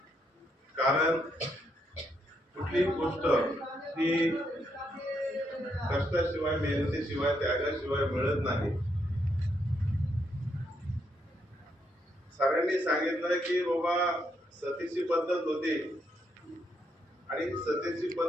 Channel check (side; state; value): both; normal; correlation 0.77